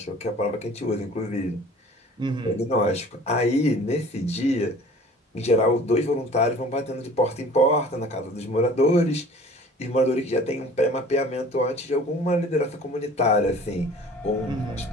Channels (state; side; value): normal; both; correlation 0.47